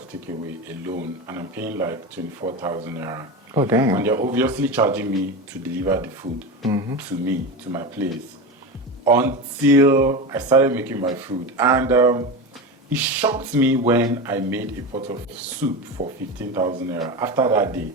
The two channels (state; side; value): normal; both; correlation 0.22